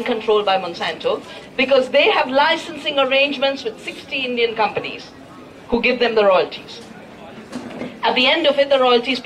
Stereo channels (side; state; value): both; identical; correlation 1.00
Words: controlled by Monsanto, because they have licensing arrangements with 60 Indian companies who give them the royalties. At the end of it, the royalty is